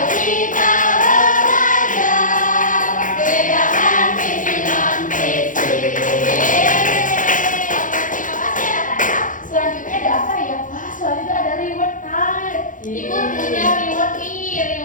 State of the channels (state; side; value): late; right; 0.38 ms